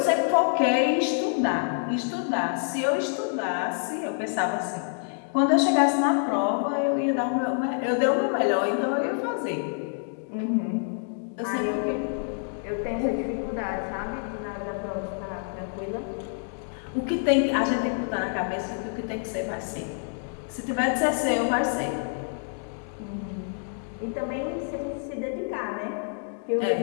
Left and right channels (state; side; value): silent; right; 60 dB below the other